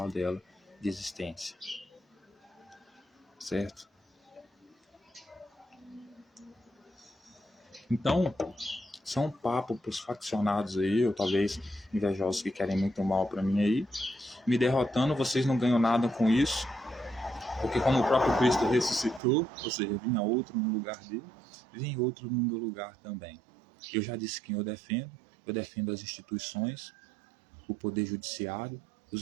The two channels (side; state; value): left; drops out; at 19.2 s